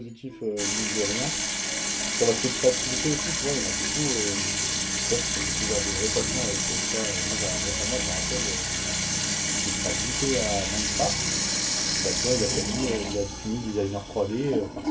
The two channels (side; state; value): both; identical; correlation 1.00